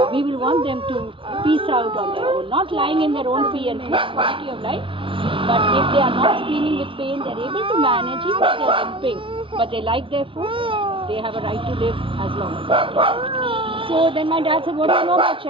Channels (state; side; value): late; left; 0.25 ms